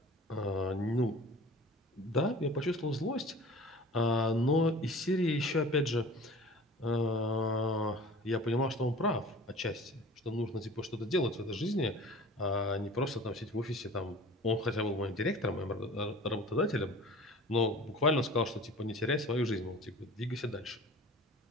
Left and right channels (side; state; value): both; normal; correlation 0.42